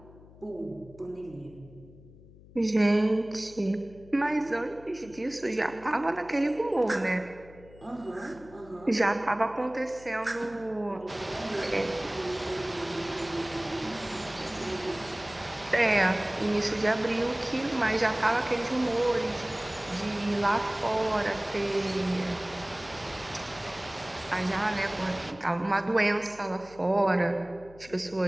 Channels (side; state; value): left; noise; hum, 21 dB below the sound